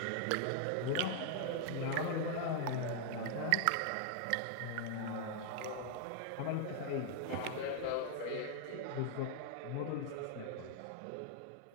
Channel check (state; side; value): different; both; correlation 0.00